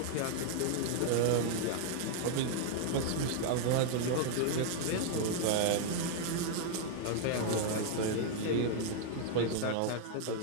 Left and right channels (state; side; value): different; both; correlation -0.01